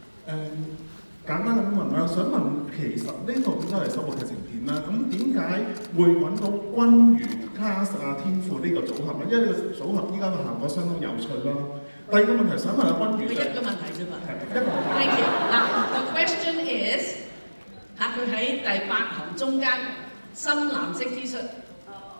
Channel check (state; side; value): inverted; both; correlation -1.00